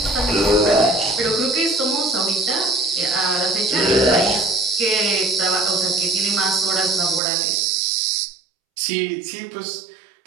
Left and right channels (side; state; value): left; drops out; at 7.2 s